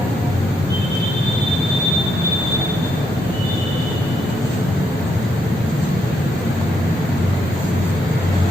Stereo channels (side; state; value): both; normal; correlation 0.76